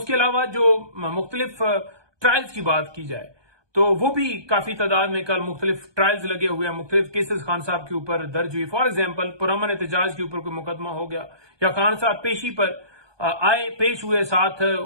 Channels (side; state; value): left; late; 1.2 ms